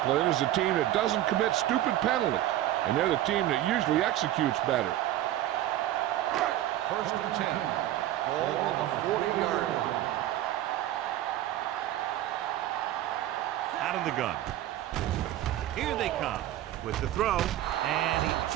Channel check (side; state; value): left; quieter; 13.6 dB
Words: is the team that doesn't commit stupid penalties. And they're the team that usually executes better. First and 10. Ball on the 40-yard line. Out of the gun. Here they come with the throw, and he